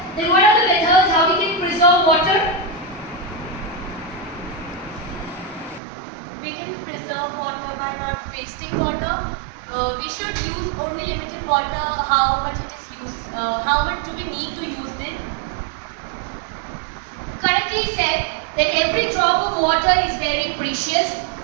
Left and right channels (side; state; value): left; drops out; at 5.8 s